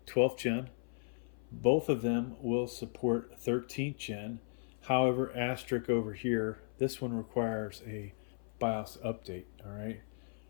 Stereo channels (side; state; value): right; silent; 54 dB below the other